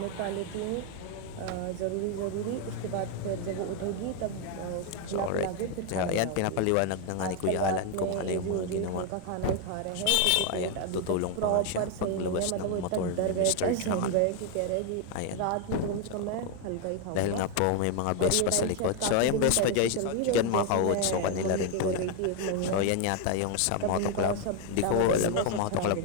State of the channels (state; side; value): different; both; correlation 0.01